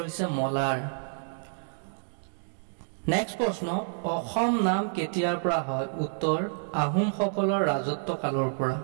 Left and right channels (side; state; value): left; silent; digital silence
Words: হৈছে মলাৰ। নেক্সট প্ৰশ্ন, অসম নাম কেতিয়াৰ পৰা হয়? উত্তৰ আহোমসকলৰ ৰাজত্ব কালৰ পৰা।